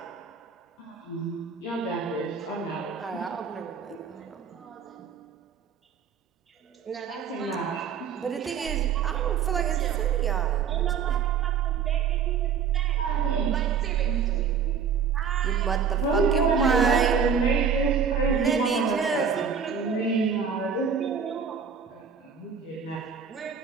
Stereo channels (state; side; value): quieter; left; 6.7 dB